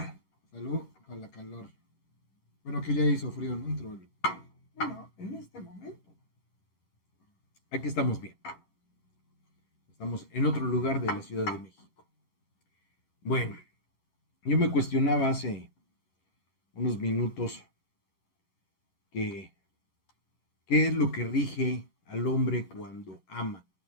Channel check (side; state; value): right; late; 11 ms